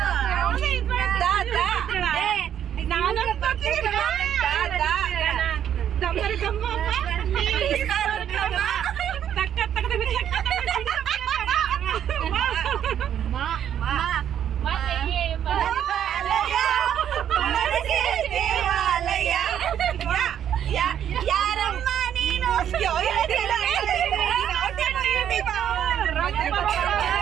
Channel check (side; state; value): left; quieter; 9.7 dB